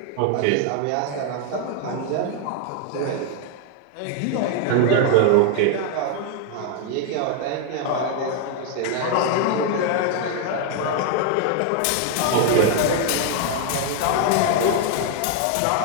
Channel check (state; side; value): different; both; correlation 0.00